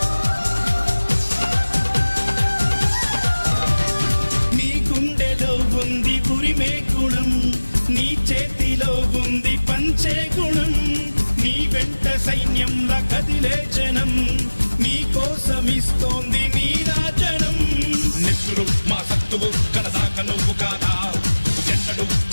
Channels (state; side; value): inverted; both; correlation -1.00